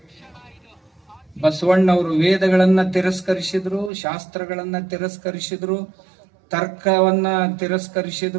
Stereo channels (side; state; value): left; drops out; at 3.9 s